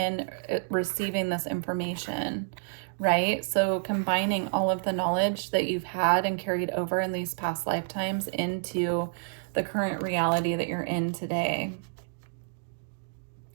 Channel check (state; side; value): silent; left; digital silence